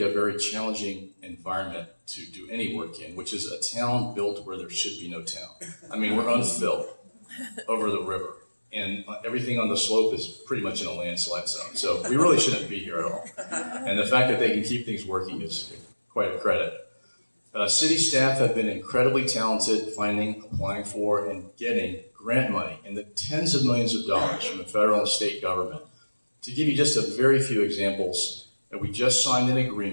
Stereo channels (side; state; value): both; inverted; correlation -1.00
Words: a very challenging environment to do any work in, which is a town built where there should be no town. I mean, we're unfilled over the river, and everything on the slope is pretty much in a landslide zone. So we really shouldn't be here at all. And the fact that they can keep things working is quite a credit. City staff have been incredibly talented finding, applying for, and getting grant money in the tens of millions of dollars from the federal and state government. To give you just a very few examples, we just signed an